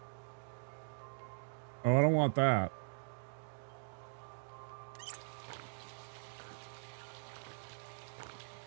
Oh, I don't want that.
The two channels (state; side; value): silent; left; digital silence